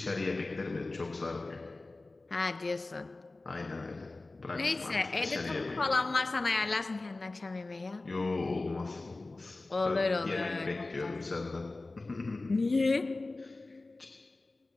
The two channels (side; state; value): right; quieter; 3.2 dB